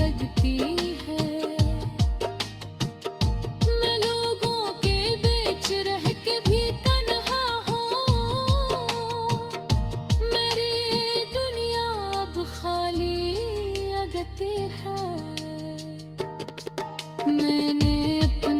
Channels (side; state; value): both; identical; correlation 1.00